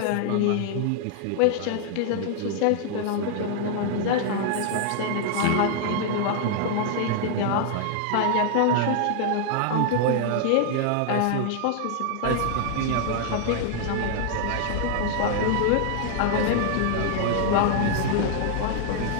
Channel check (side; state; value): both; different; correlation 0.00